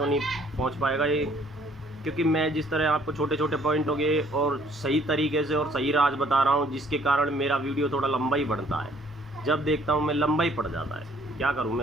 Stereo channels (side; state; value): both; normal; correlation 0.60